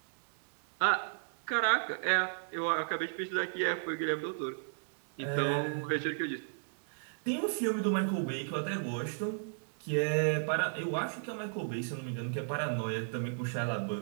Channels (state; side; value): silent; left; digital silence